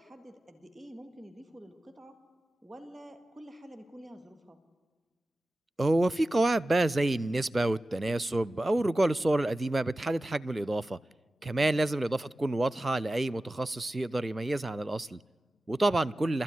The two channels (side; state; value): both; normal; correlation 0.95